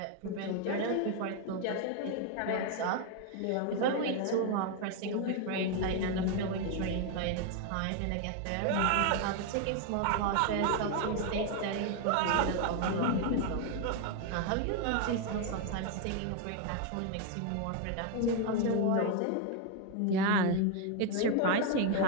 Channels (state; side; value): different; both; correlation 0.01